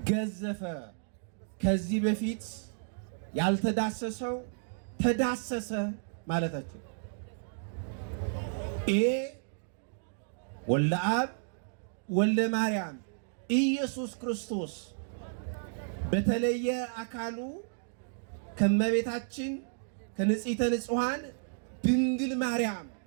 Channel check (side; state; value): left; silent; digital silence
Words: ገዘፈ፣ ከዚህ በፊት ያልተዳሰሰው ተዳሰሰ ማለታችን። ይሄ ወልደ አብ ወልደ ማርያም ኢየሱስ ክርስቶስ በተለየ አካሉ ከመቤታችን ከንጽሕተ ንጹሐን ድንግል ማርያም